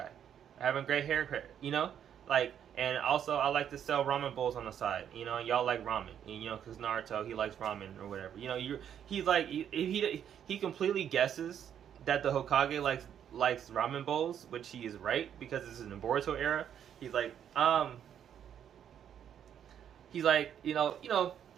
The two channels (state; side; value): quieter; left; 9.2 dB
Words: I have a great haircut, and also I like to sell ramen bowls on the side, y'all like ramen, because Naruto, he likes ramen or whatever, he's like, he completely guesses that the Hokage likes ramen bowls, which he is right, because it's in the Boruto era. He's like, I'm